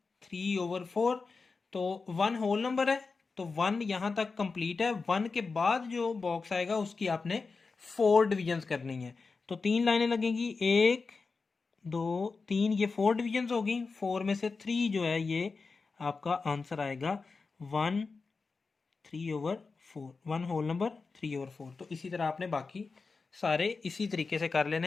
3/4। तो 1 होल नंबर है, तो 1 यहाँ तक कंप्लीट है। 1 के बाद जो बॉक्स आएगा उसकी आपने 4 डिवीजन्स करनी है। तो 3 लाइनें लगेंगी, 1 2 3, ये 4 डिवीजन्स होगी। 4 में से 3 जो है ये आपका आंसर आएगा 1 3/4, 1 होल नंबर 3/4। तो इसी तरह आपने बाकी सारे इसी तरीके से कर लेने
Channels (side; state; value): right; quieter; 4.4 dB